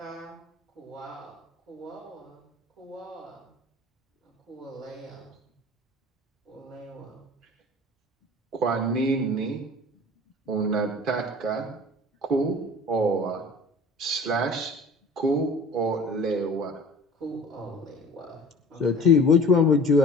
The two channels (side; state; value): both; normal; correlation 0.43